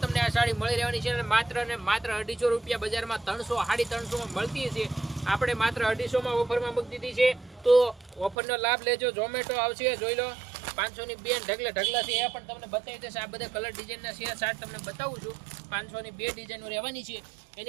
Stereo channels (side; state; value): left; drops out; at 8.3 s